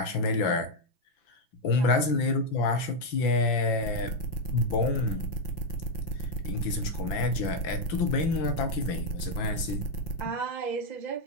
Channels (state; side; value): late; right; 5.9 ms